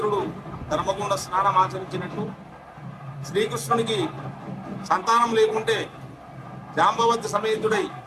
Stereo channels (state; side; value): identical; both; correlation 1.00